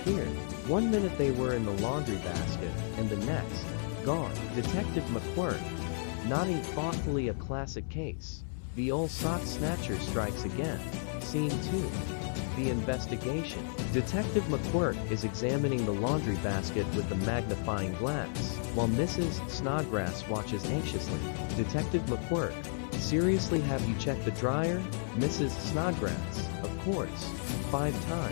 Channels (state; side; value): silent; right; 56 dB below the other